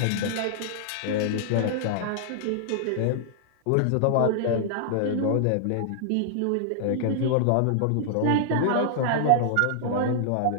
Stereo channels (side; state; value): both; different; correlation -0.01